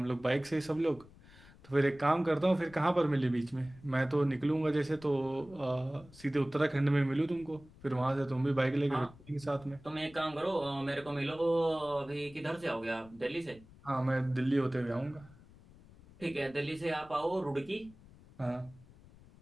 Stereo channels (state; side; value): noise; left; rumble, 23 dB below the sound